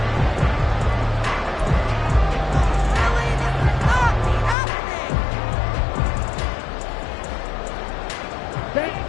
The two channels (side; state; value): right; drops out; at 4.5 s